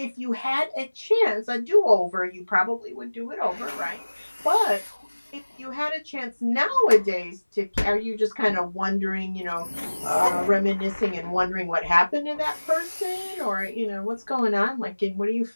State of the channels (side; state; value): both; inverted; correlation -1.00